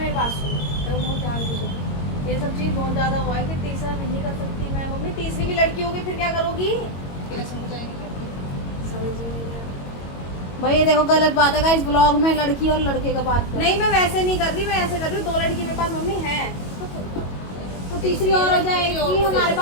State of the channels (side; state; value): right; late; 22 ms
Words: बात सुनो, तेरे को बहुत ध्यान दो, ये सब चीज बहुत ज्यादा हुआ है कि तीसरा नहीं कर सकती मैं। मम्मी तीसरी भी लड़की होगी फिर क्या करोगी? कैसे हो जाएगी? समझ ही नहीं आ रहा। भाई ये देखो गलत बात है गाइस, ब्लॉग में लड़की और लड़के का बात कर। नहीं मैं वैसे नहीं कर रही, मैं ऐसे कर रही हूँ, 2 लड़की मेरे पास मम्मी है। तो तीसरी और हो जाएगी, हमारे